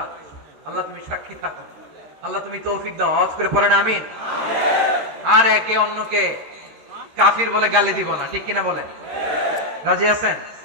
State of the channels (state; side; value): late; left; 13 ms